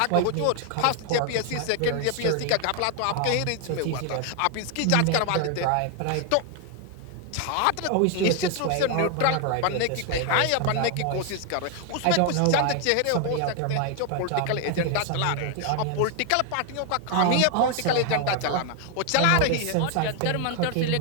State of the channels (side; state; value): both; different; correlation 0.01